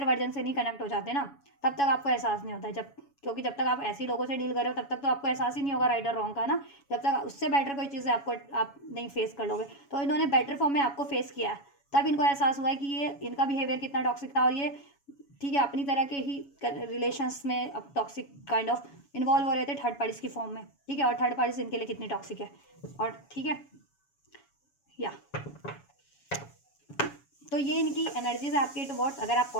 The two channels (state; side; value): late; right; 7.2 ms